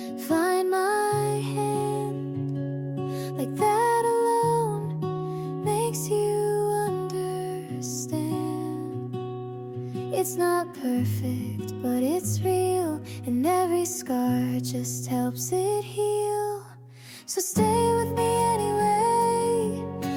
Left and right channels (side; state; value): both; identical; correlation 1.00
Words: It's not perfect, but it's real, and every scar just helps it heal. So stay with me anyway,